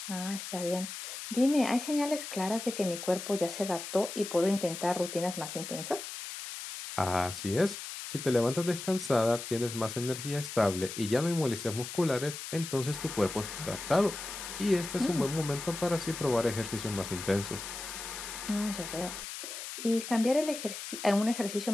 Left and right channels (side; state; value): left; noise; hiss, 8 dB below the sound